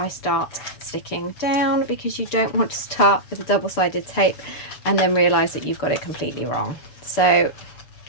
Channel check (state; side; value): late; right; 6.7 ms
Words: start sticking down, because you don't want to start with a double-sided tape and then realize that you've got it completely wrong. So